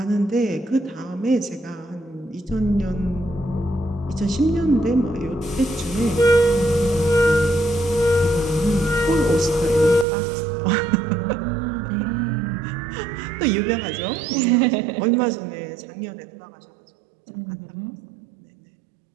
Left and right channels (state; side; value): drops out; left; at 10.1 s